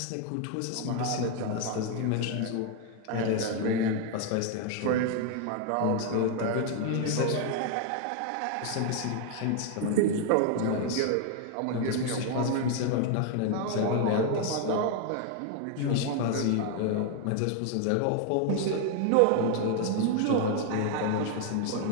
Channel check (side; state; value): both; different; correlation 0.00